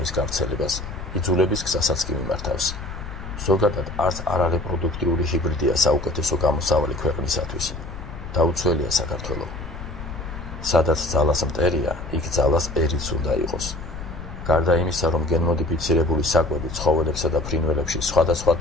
გავრცელებას, იძულების გზასაც კი მიმართავს. ზოგადად არც არარეპროდუქტიული ჰიბრიდია საუკეთესო გამოსავალი ქვეყნისათვის. დაუცველია საქართველო. სადაც ძალას მტერია, იქ ძალას ერიც უნდა იყოს. გარდა იმისა, რომ გენმოდიფიცირებული საკვები ცხოველებსა და ფრინველებში სხვადასხვა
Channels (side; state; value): left; noise; rumble, 10 dB below the sound